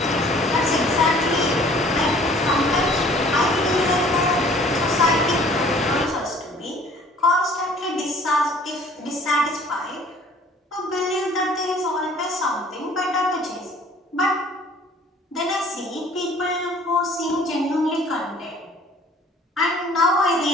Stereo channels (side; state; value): both; normal; correlation 0.53